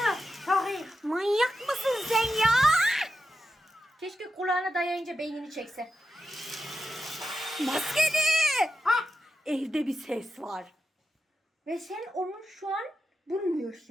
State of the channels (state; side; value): normal; both; correlation 0.89